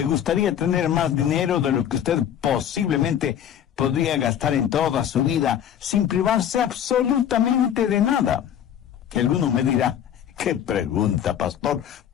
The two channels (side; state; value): right; quieter; 9.7 dB